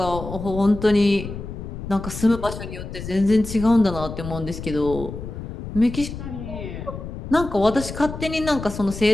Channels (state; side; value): noise; left; rumble, 9 dB below the sound